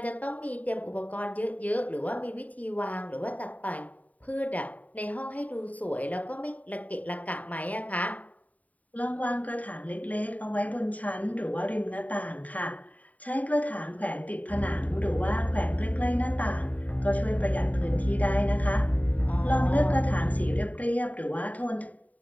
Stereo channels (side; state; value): right; late; 0.071 ms